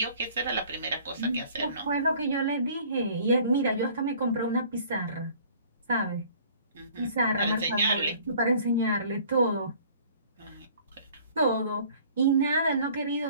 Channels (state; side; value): inverted; both; correlation -0.53